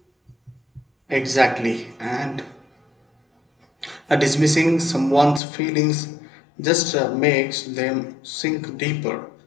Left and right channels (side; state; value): right; drops out; at 5.4 s